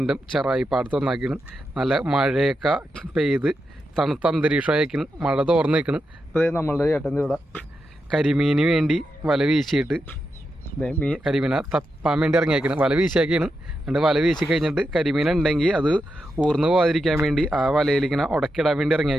ചെറായി പാടത്ത് വന്നാക്കിയാണ്. നല്ല മഴയൊക്കെ പെയ്ത് തണുത്ത അന്തരീക്ഷമായിരിക്കണം, മഴ തോർന്ന് നിൽക്കണം. അപ്പോൾ നമ്മളുടെ ചേട്ടൻ്റെ ഇവിടെ കരിമീന് വേണ്ടി വല വീശിയിട്ട് കരിമീനെ തപ്പാൻ വേണ്ടി ഇറങ്ങിയേക്കണം. വല വീശിയാക്കിയാണ്. എന്നിട്ട് വല വീശി കഴിഞ്ഞിട്ട് കരിമീൻ ഉണ്ടെങ്കിൽ അത് ഊർന്ന് പോകാതിരിക്കാൻ വേണ്ടി ആ വലയിലിങ്ങനെ ഉടക്കിടാൻ വേണ്ടി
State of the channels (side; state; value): both; normal; correlation 0.87